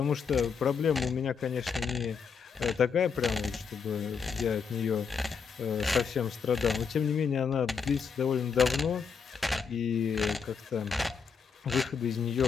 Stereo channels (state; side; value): quieter; right; 6.0 dB